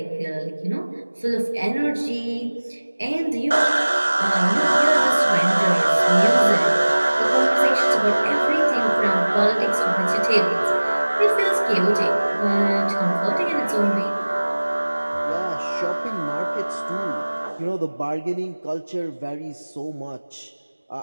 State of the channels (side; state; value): both; inverted; correlation -1.00